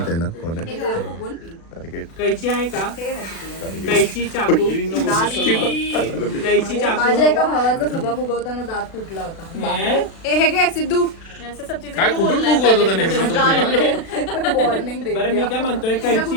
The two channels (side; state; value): right; late; 36 ms